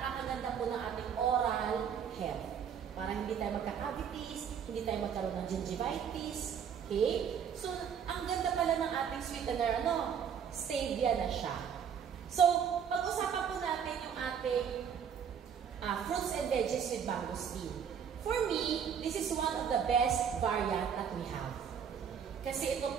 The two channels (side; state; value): left; quieter; 7.7 dB